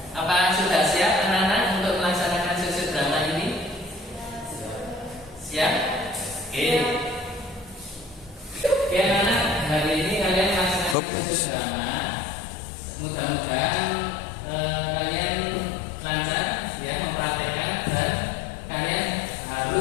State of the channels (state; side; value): drops out; right; at 11.0 s